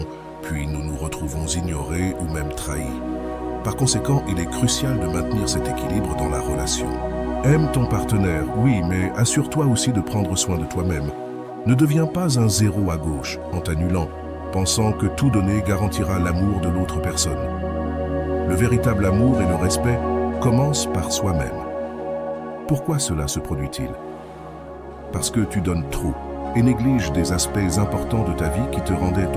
puis nous nous retrouvons ignorés ou même trahis. Par conséquent, il est crucial de maintenir cet équilibre dans la relation. Aime ton partenaire, oui, mais assure-toi aussi de prendre soin de toi-même. Ne deviens pas un zéro à gauche en t'annulant, pensant que tout donner garantira l'amour de l'autre personne. Le véritable amour et le respect commencent par soi-même. Pourquoi cela se produit-il? Parce que tu donnes trop et négliges des aspects importants de ta vie qui te rendaient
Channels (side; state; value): both; identical; correlation 1.00